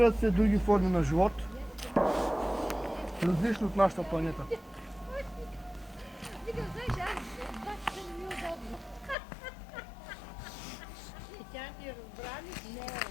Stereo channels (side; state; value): right; drops out; at 9.2 s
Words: се други форми на живот, различни от нашата планета.